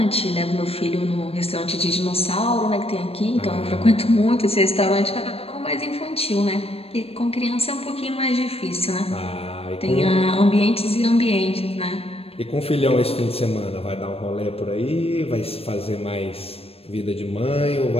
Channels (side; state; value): right; late; 0.28 ms